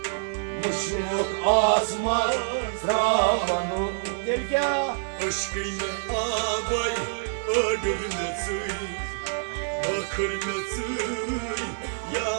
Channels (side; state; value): left; silent; digital silence